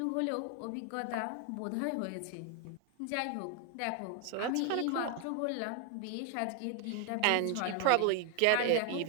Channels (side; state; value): both; different; correlation 0.01